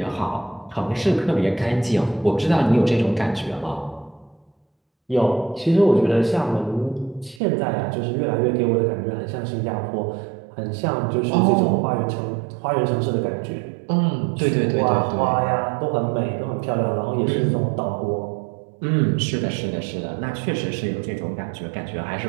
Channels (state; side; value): drops out; left; at 7.4 s